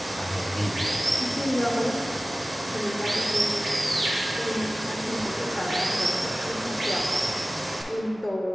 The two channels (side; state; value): both; normal; correlation 0.97